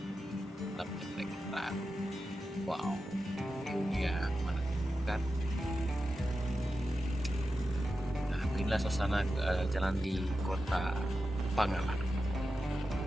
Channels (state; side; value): normal; both; correlation 0.91